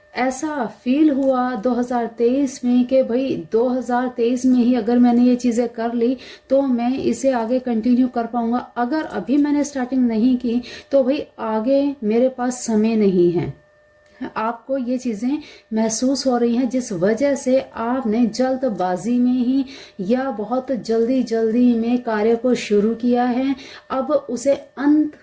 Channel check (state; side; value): identical; both; correlation 1.00